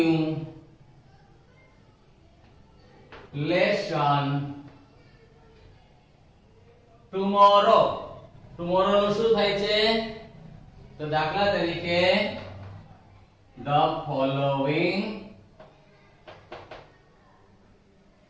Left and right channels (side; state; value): both; identical; correlation 1.00